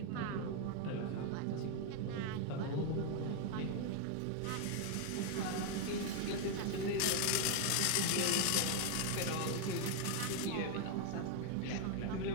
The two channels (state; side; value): different; both; correlation 0.01